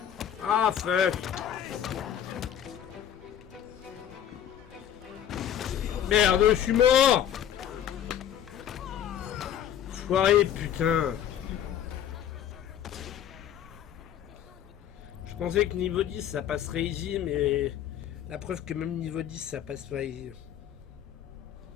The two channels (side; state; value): right; quieter; 10.0 dB